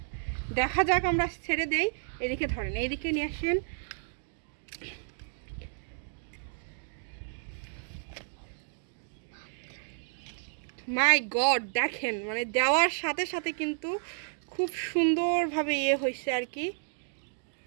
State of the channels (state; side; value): silent; left; digital silence